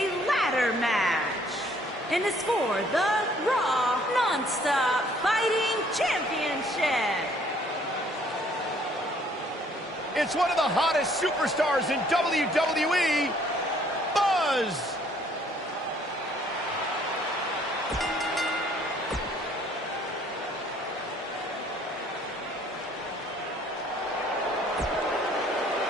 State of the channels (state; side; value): normal; both; correlation 0.61